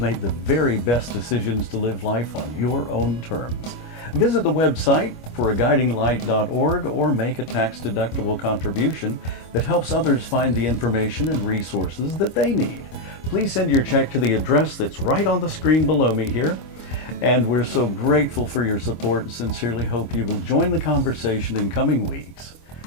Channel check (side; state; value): right; late; 25 ms